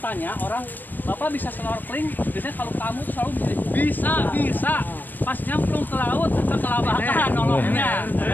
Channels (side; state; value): right; late; 0.090 ms